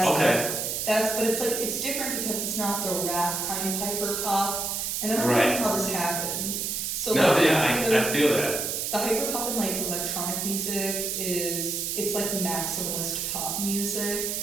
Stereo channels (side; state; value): right; noise; hiss, 1 dB below the sound